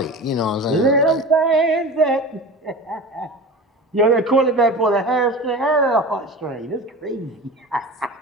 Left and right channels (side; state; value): both; normal; correlation 0.32